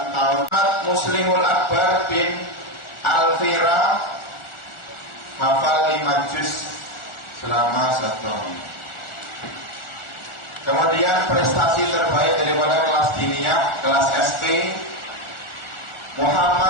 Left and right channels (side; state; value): right; late; 1.4 ms